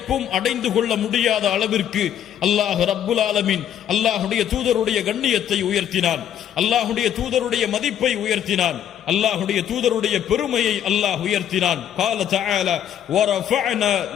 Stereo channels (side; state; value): right; quieter; 10.1 dB